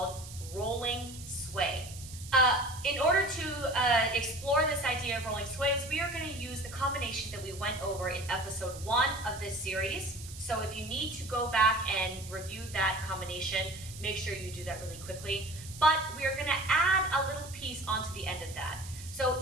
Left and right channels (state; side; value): noise; right; hiss, 14 dB below the sound